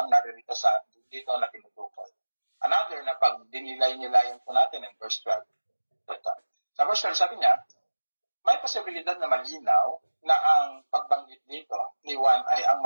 naririto sa dito na tinutukoy. Another na pag dinilay-nilayan po natin in verse 12. Sa verse 12, sabi niya, may posibilidad na malinaw na ang pagbanggit dito ni Juan ay ang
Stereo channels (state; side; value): inverted; both; correlation -1.00